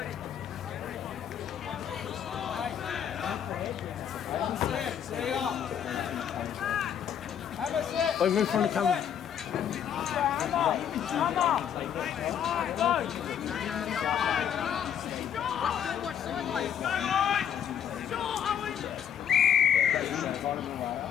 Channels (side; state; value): right; quieter; 8.9 dB